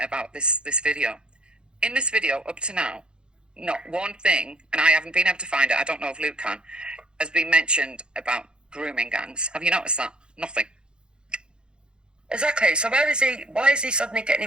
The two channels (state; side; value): late; left; 0.050 ms